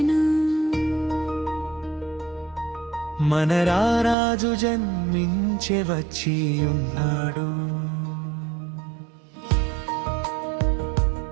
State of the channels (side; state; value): left; drops out; at 4.2 s